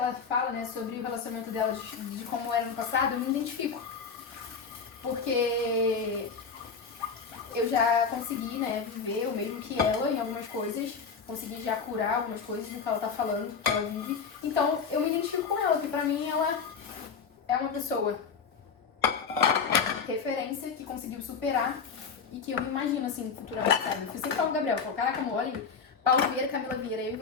fala, né, sobre o relacionamento dela, de como era no passado, eu me identifico. Porque eu já consegui, né, viver o mesmo que ela em algumas coisas, consegui já curar algumas coisas do que ela tá falando, que ela vive. Então, eu me identifico com ela, porque pra mim ela é uma pessoa referência que conseguiu superar e que eu me imagino, assim, futuramente, sabe? Eu sempre falo com o Gabriel, falo, caraca, amor, olha aí, Paulo Vieira, Camila Vieira, eu e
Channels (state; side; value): quieter; right; 5.7 dB